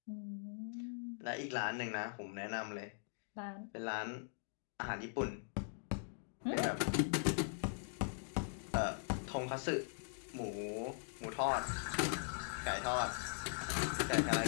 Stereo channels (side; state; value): right; silent; digital silence